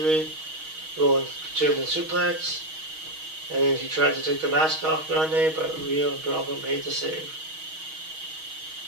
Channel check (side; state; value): left; late; 6.3 ms